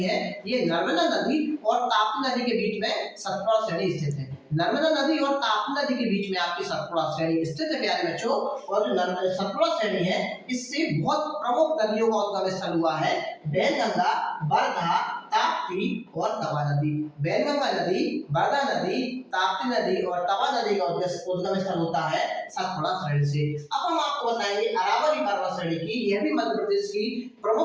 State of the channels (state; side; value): identical; both; correlation 1.00